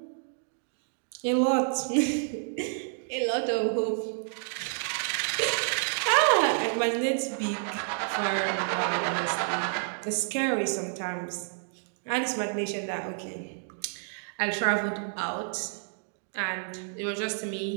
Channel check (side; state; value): left; silent; digital silence